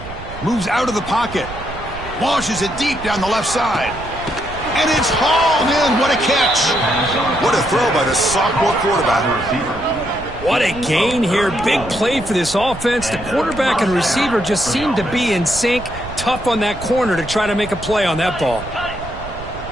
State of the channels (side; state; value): right; noise; rumble, 13 dB below the sound